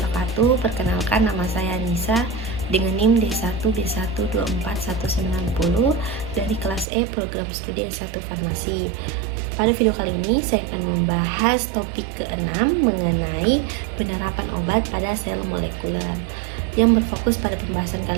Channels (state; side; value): drops out; left; at 6.9 s